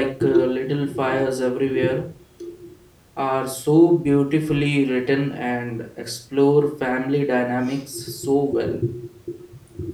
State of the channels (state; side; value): identical; both; correlation 1.00